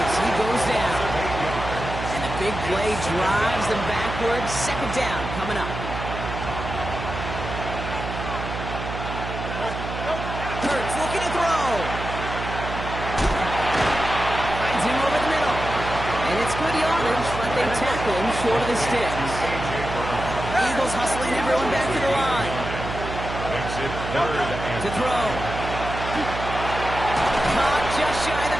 So he goes down. And a big play drives them backwards. 2nd down coming up. Hurts looking to throw. Finds him over the middle. And it's good yardage, but they tackle him short of the sticks. Eagles hustling everyone back to the line. To throw. Caught just shy of the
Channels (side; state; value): right; noise; hum, 7 dB below the sound